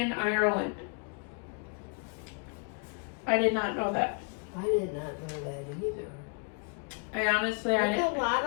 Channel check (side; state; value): right; quieter; 36.0 dB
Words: Ireland. I did not know that. I did not know that either. I honestly, There's a lot